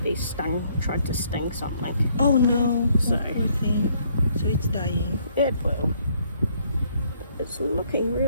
bee tried to sting something. Oh no. So- Oh, poor thing. So it's dying. It will. It's looking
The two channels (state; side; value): inverted; both; correlation -0.67